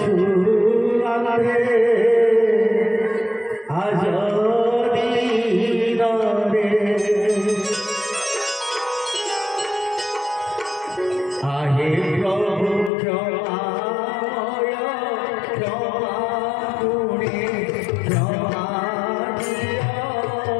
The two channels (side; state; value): right; drops out; at 12.9 s